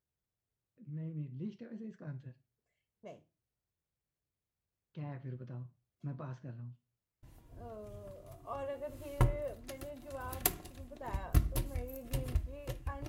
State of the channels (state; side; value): identical; both; correlation 1.00